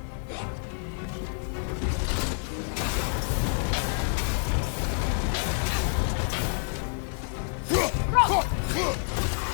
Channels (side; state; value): right; silent; 59 dB below the other